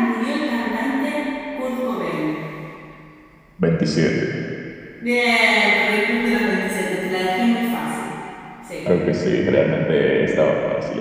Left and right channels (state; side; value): identical; both; correlation 1.00